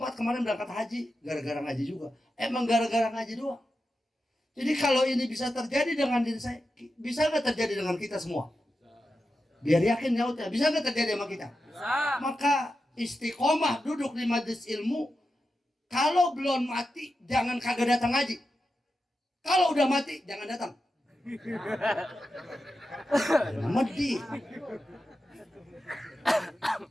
kemarin berangkat haji gara-gara ngaji juga. Emang gara-gara ngaji doang. Jadi kalau ini bisa terjadi dengan diri saya, bisa nggak terjadi dengan kita semua? Biar yakin nyautnya, bisa nggak terjadi sama kita? Bisa. Maka istiqomah duduk di majelis ilmu. Kalau belum mati jangan kagak datang ngaji. Kalau udah mati jangan datang. Mati.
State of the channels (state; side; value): normal; both; correlation 0.90